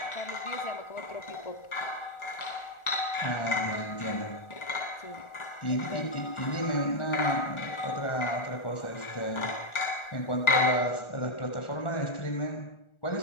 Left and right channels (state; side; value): late; right; 1.4 ms